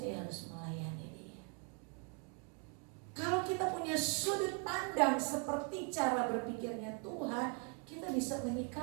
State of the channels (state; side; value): quieter; left; 38.1 dB